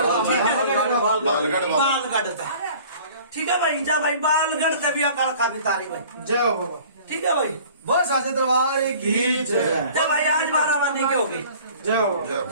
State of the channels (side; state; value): both; inverted; correlation -0.48